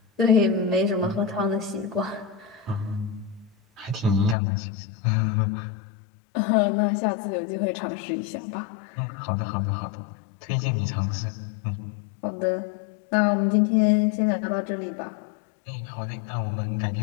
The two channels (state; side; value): drops out; right; at 4.4 s